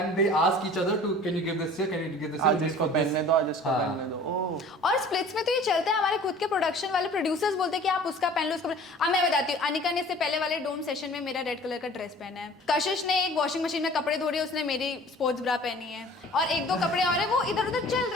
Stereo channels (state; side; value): normal; both; correlation 0.47